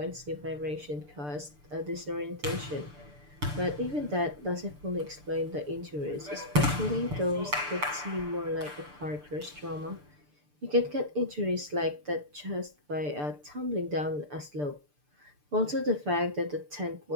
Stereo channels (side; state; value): left; late; 6.8 ms